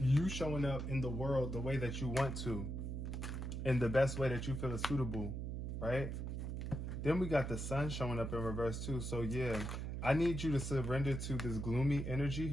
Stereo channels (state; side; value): noise; right; hum, 4 dB below the sound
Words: showing up in the world the way that you want to, in the best way that you feel is suitable, right? Then we got the sun showing up in reverse too. So yeah, I need you to surrender to this gloomy energy